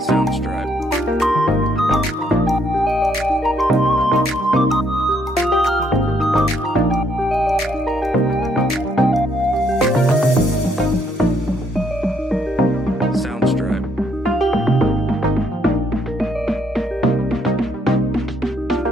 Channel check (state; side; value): normal; both; correlation 0.70